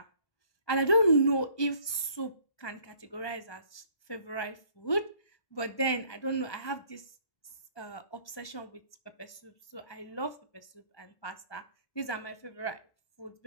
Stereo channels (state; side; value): late; right; 1.2 ms